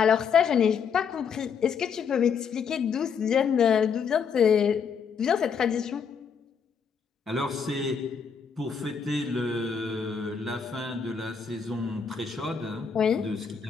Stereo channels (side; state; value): right; quieter; 6.4 dB